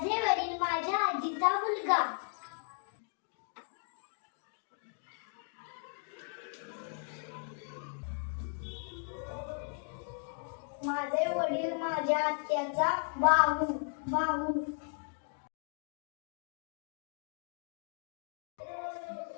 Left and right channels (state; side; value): silent; right; 54 dB below the other